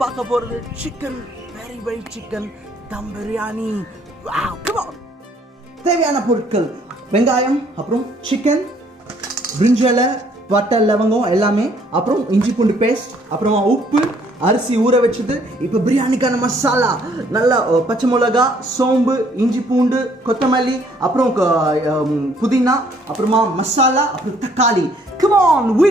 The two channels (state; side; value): normal; both; correlation 0.63